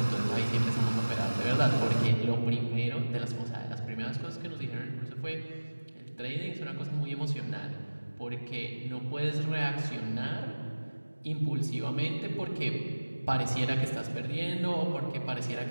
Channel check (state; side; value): inverted; both; correlation -1.00